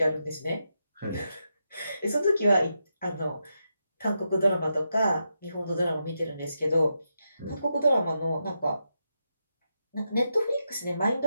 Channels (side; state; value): both; inverted; correlation -0.85